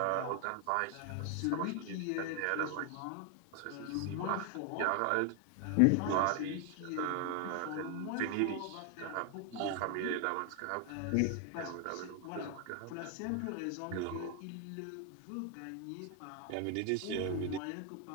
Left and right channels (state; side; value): different; both; correlation 0.00